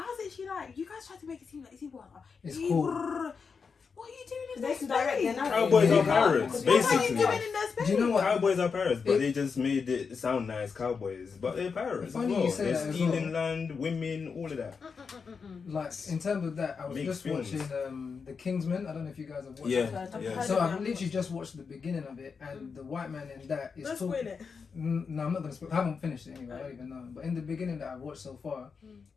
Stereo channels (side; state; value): right; quieter; 5.5 dB